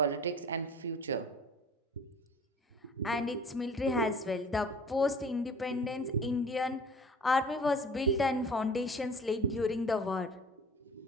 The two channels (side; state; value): both; normal; correlation 0.45